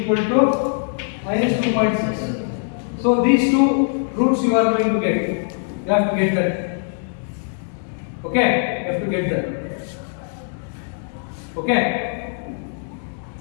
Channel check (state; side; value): silent; right; digital silence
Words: to minus 2.6. So these 2 roots you are going to get. You have to get that. Okay, you have to get that. Okay.